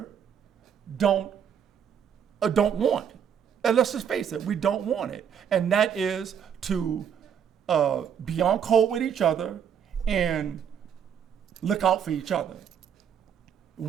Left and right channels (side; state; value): left; quieter; 8.1 dB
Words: don't want. And let's just face it, we don't want it. And that is to be on code with each other and look out for each other.